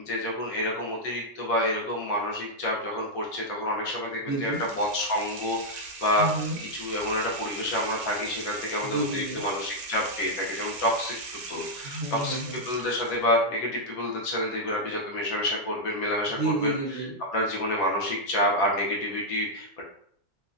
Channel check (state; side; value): normal; both; correlation -0.04